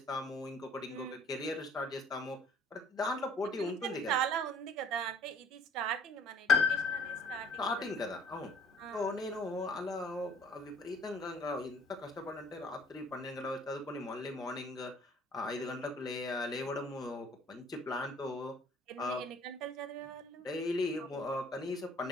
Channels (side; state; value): both; normal; correlation 0.55